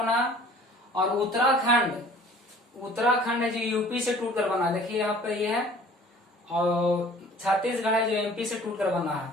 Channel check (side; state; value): both; normal; correlation 0.50